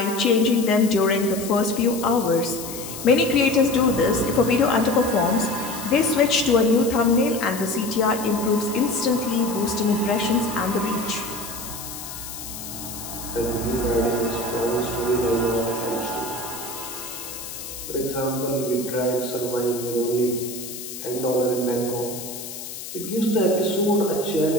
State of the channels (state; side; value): noise; left; hiss, 10 dB below the sound